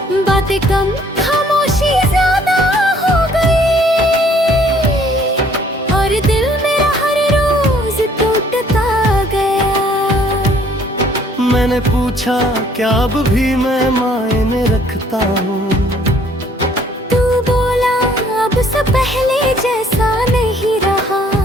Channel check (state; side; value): normal; both; correlation 0.61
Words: बातें कम खामोशी ज्यादा हो गई, और दिल मेरा हर रोज टूटता गया। मैंने पूछा क्या अब भी मैं मायने रखता हूँ, तू बोला अब से पहले जैसा नहीं रहा।